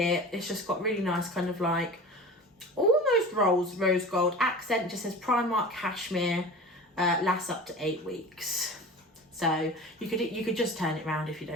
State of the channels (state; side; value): normal; both; correlation 0.35